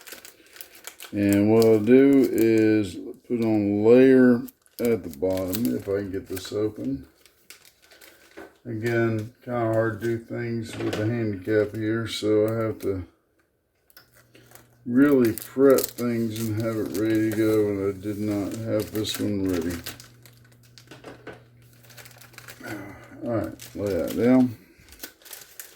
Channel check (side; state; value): both; identical; correlation 1.00